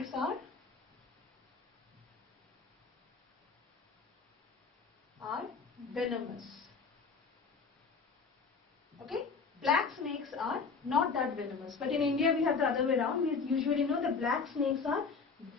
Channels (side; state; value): right; quieter; 5.0 dB